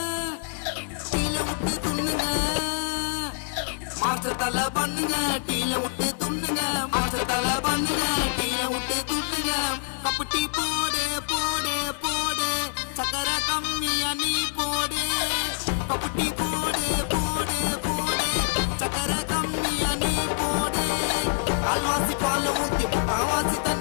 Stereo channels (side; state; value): right; silent; 61 dB below the other